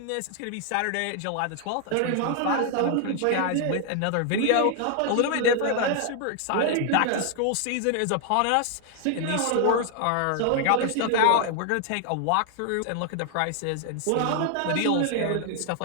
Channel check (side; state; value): both; different; correlation 0.00